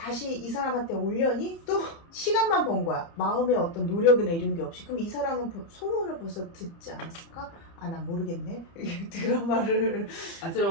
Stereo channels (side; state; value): right; late; 30 ms